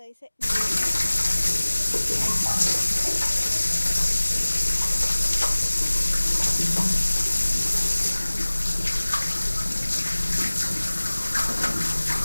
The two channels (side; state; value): both; inverted; correlation -1.00